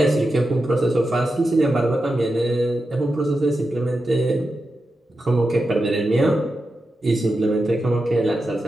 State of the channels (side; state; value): both; normal; correlation 0.90